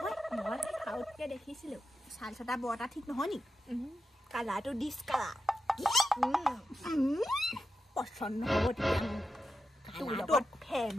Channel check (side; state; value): both; normal; correlation 0.88